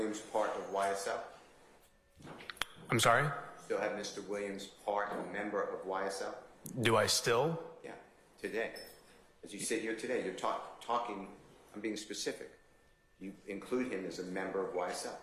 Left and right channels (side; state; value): both; identical; correlation 1.00